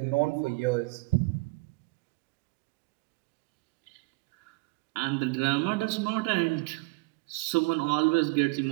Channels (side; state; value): left; quieter; 25.9 dB